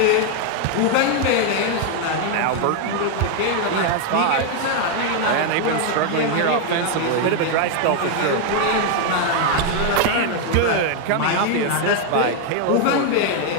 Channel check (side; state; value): both; different; correlation 0.00